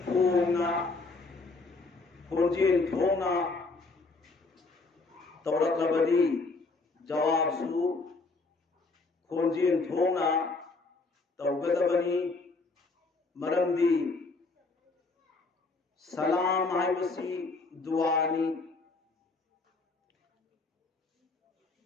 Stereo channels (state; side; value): quieter; right; 3.7 dB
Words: पूना खोजेन थोना तौरकबदी जवाब सु खोजेन थोना तौगदबनी मरंदी सलाम हाइबसी दुआनी